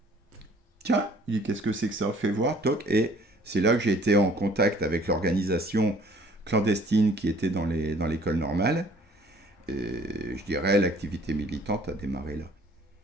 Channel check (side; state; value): both; normal; correlation 0.56